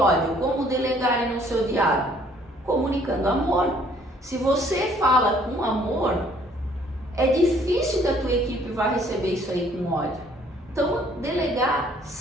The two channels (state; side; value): normal; both; correlation 0.61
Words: Como delegar e não ser odiado? Comunicando amor. Se você fala com amor, é difícil que a tua equipe vá receber isso aí com ódio. Então, delegar